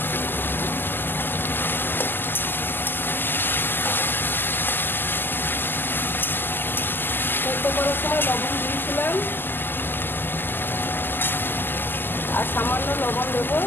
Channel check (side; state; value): right; late; 0.094 ms